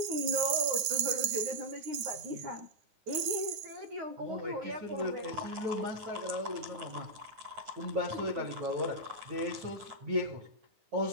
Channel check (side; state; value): left; late; 9.5 ms